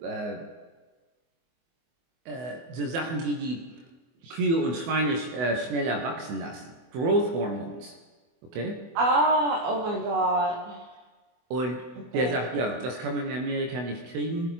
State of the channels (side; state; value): left; late; 24 ms